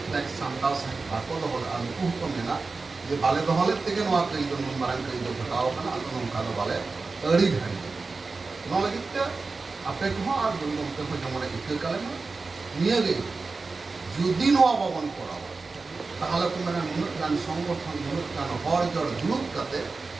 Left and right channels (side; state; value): left; quieter; 4.0 dB